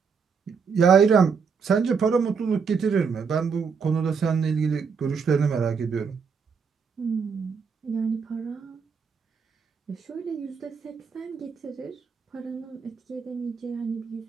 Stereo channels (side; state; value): left; quieter; 5.8 dB